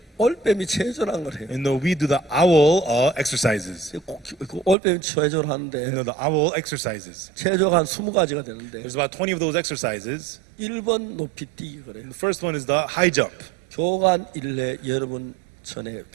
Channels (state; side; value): drops out; left; at 4.8 s